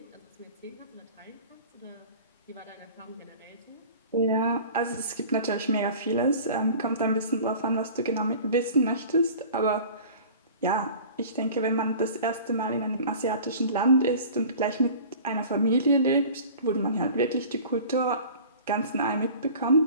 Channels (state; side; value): inverted; both; correlation -0.42